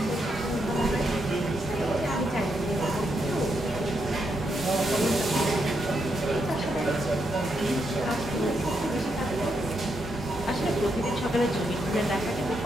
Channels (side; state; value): both; normal; correlation 0.80